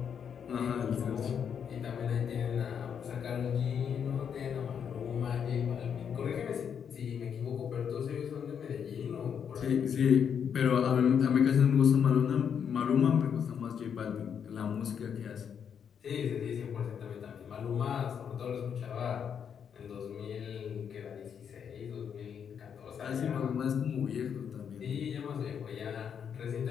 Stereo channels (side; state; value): right; quieter; 7.7 dB